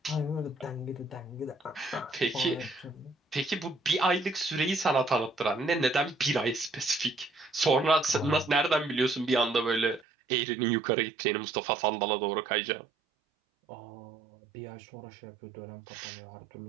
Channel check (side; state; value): left; drops out; at 10.1 s